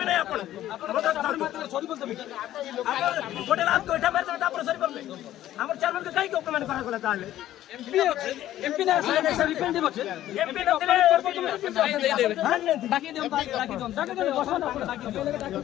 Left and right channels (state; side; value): quieter; right; 13.2 dB